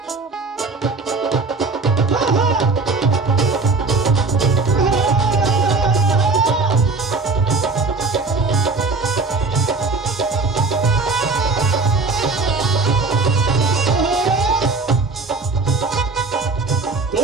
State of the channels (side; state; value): left; quieter; 3.8 dB